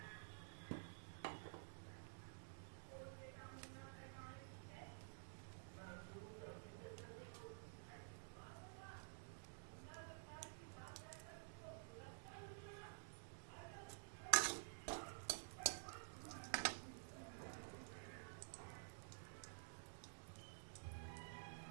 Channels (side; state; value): left; silent; digital silence